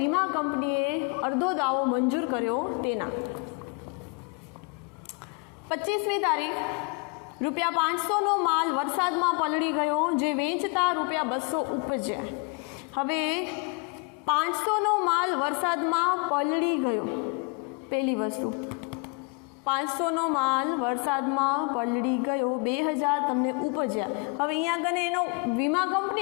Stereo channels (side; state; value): right; quieter; 32.9 dB